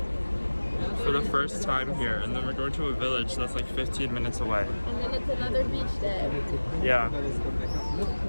For the first time here, and then we're going to a village that's like 15 minutes away. And then it's another beach day. Yeah.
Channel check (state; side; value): inverted; both; correlation -1.00